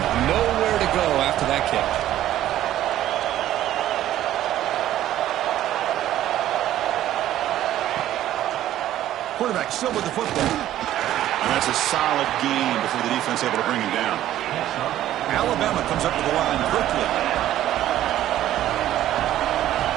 Nowhere to go after that kick. Quarterback still with the football. And that's a solid gain before the defense able to bring him down. Alabama comes up with the line quickly.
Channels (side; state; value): left; quieter; 12.9 dB